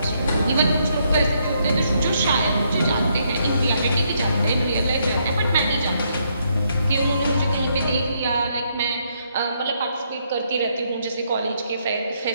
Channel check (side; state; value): both; inverted; correlation -0.74